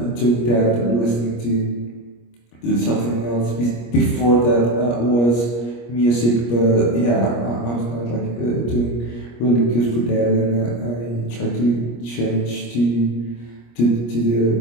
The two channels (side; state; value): right; late; 25 ms